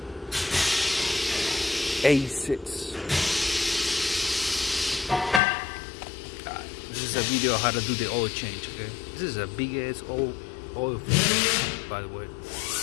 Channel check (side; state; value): right; drops out; at 5.4 s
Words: A6. This is a video of how to do the oil change, okay? This is a big ass oil filter, by the way.